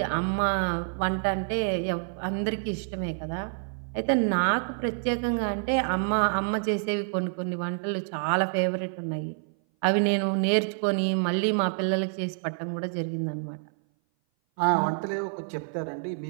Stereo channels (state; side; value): silent; left; 57 dB below the other